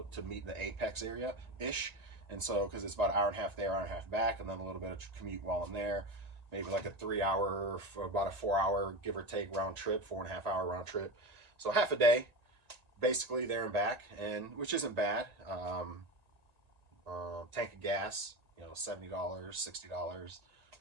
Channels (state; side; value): late; left; 1.9 ms